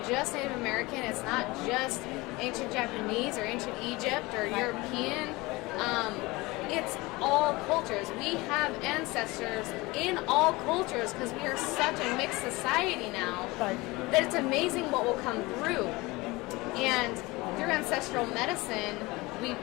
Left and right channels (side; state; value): right; quieter; 22.3 dB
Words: just Native American, it's not just ancient Japanese or ancient Egypt or European, it's all cultures. We have ancestors in all cultures because we are such a mixed society now that it's amazing what will come through. And through ancestral medicine, we